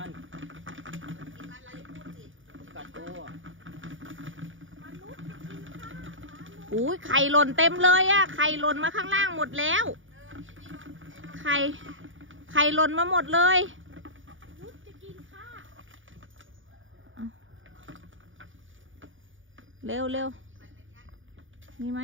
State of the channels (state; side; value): late; left; 0.57 ms